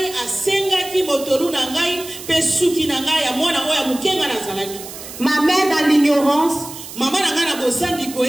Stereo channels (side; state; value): right; noise; hiss, 13 dB below the sound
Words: Ma mère, dans l'ignorance,